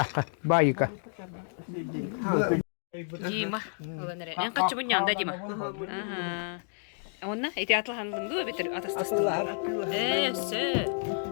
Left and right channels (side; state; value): right; silent; 58 dB below the other